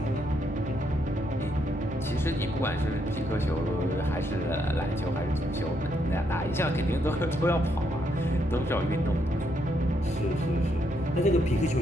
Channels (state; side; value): normal; both; correlation 0.76